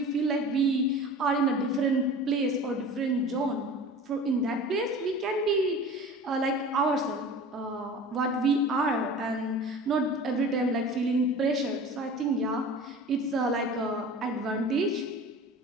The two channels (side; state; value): both; normal; correlation 0.39